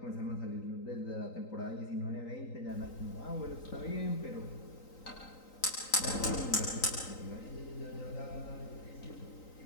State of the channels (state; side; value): late; right; 3.9 ms